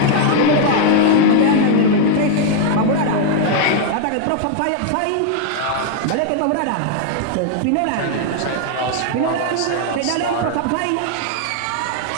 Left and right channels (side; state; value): both; different; correlation 0.00